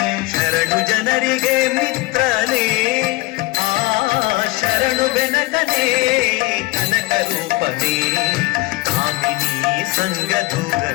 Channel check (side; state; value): right; quieter; 21.0 dB